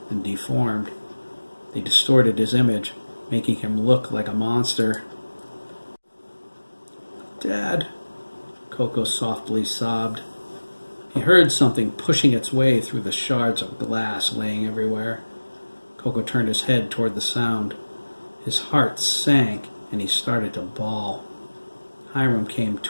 and deformed. They distorted his image, making him look like a monster. "Dad," Coco softly sobbed. He heard something pushing its way through the shards of glass laying everywhere. Coco turned his head toward the sound. His heart sank, and he started to bawl. Hiram came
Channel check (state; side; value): inverted; both; correlation -1.00